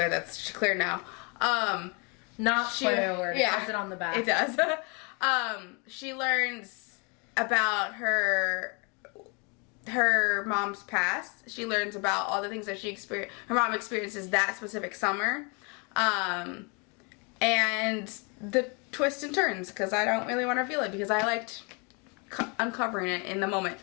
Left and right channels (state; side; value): quieter; right; 33.0 dB